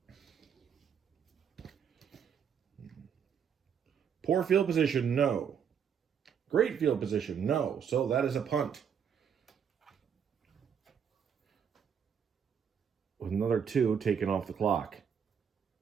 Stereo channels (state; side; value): quieter; left; 7.6 dB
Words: Poor field position, no. Great field position, no. So that is a punt. With another 2 taken off the clock.